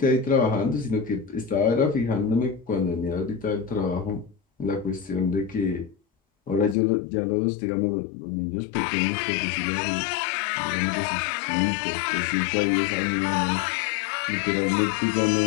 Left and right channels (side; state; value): right; drops out; at 6.8 s